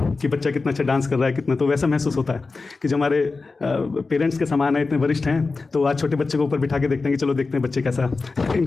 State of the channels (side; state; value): right; quieter; 4.0 dB